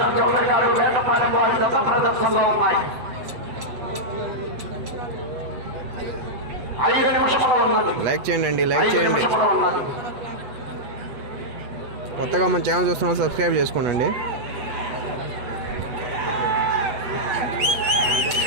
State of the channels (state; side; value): late; left; 7.9 ms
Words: చౌదరి గారు, వేటపాలెం వారి జత ప్రదర్శనలో ఉన్నాయి. 5 నిమిషముల ఉన్నది. లైక్ చేయండి, లైక్ చేయండి. ఉన్నది. కొత్తగా మన ఛానల్ చూస్తున్న సబ్స్క్రైబ్ చేసుకోండి.